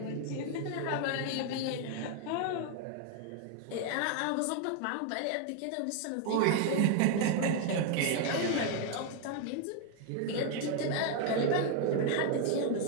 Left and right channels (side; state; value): both; different; correlation 0.01